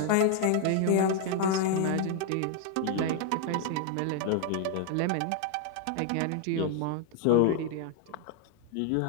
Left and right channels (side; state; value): both; different; correlation 0.00